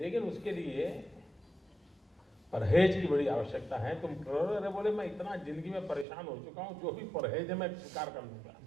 उसके लिए परहेज की बड़ी आवश्यकता है। तुम करो। अरे बोले मैं इतना जिंदगी में परेशान हो चुका हूं, जो भी परहेज है मैं स्वीकार कर लूंगा।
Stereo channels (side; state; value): left; drops out; at 6.1 s